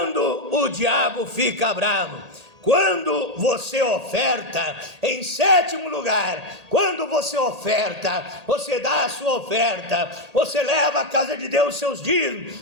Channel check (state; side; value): late; left; 1.8 ms